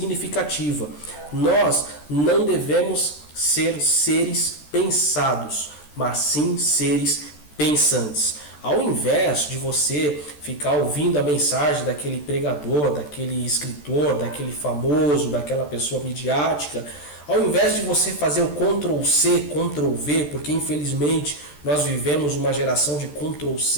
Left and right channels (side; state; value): right; late; 14 ms